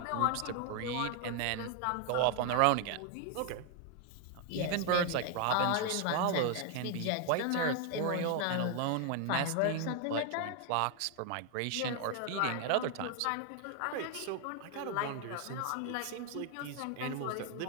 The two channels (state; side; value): different; both; correlation 0.01